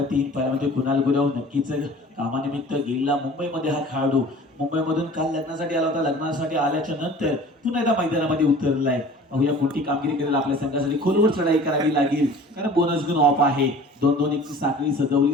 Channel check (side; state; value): both; normal; correlation 0.45